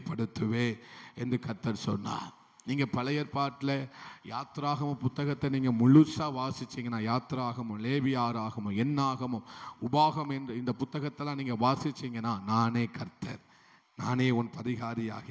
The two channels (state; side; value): identical; both; correlation 1.00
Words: என்று கர்த்தர் சொன்னார். நீங்கள் பழைய ஏற்பாட்டில் யாத்ராகம புத்தகத்தை நீங்கள் முழுசாக வாசிச்சிங்கன்னா, யாத்ராகமும், லேவியாராகமும், எண்ணாகமும், உபாகம் என்று இந்த புத்தகத்தெல்லாம் நீங்கள் வாசிச்சிங்கன்னா, நானே கர்த்தர், நானே உன்